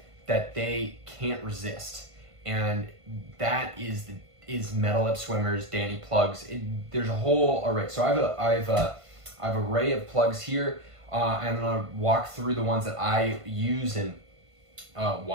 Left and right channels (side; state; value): left; late; 1.5 ms